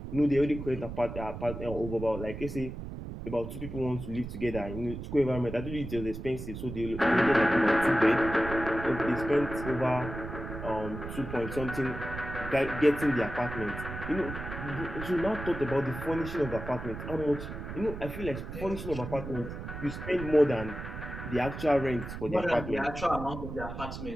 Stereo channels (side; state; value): right; noise; rumble, 8 dB below the sound